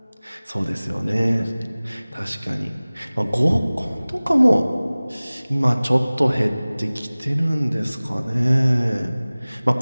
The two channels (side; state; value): both; inverted; correlation -0.99